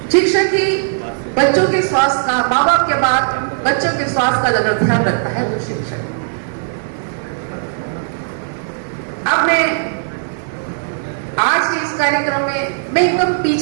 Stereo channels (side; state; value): left; silent; 55 dB below the other